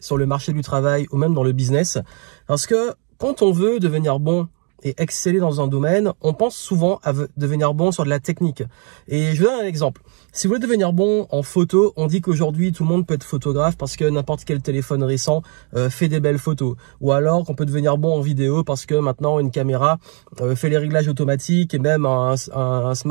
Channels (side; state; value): left; quieter; 37.2 dB